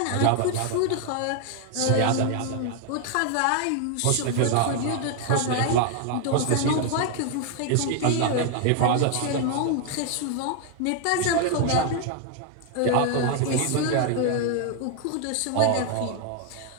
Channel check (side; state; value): both; different; correlation 0.00